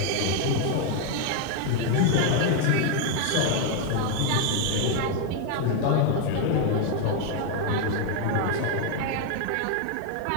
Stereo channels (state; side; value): different; both; correlation 0.01